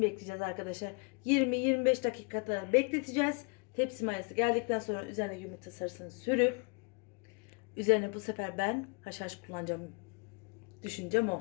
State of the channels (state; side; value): quieter; right; 34.4 dB